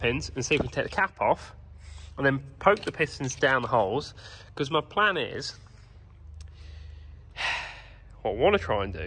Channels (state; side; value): identical; both; correlation 1.00